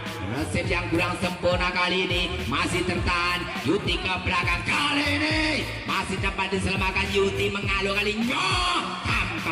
resep yang kurang sempurna kali ini masih tertahan Yuti ke belakang kali ini masih dapat diselamatkan Yuti mengalu kalinya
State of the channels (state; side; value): identical; both; correlation 1.00